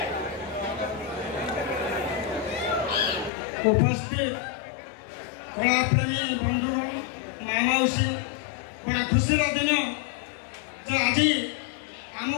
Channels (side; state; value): right; drops out; at 3.3 s